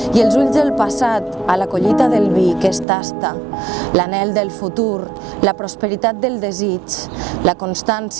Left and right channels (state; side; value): drops out; left; at 2.9 s